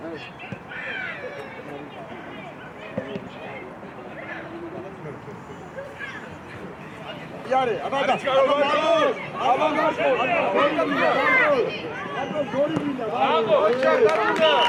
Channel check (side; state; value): both; identical; correlation 1.00